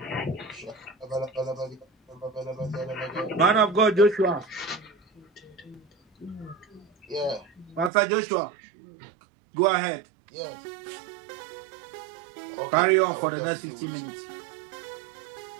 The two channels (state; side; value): drops out; left; at 7.9 s